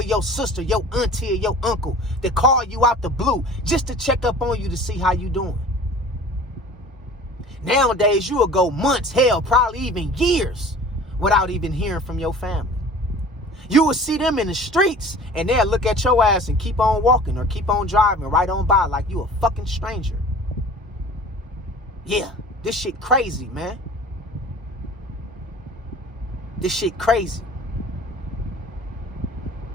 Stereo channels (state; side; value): normal; both; correlation 0.44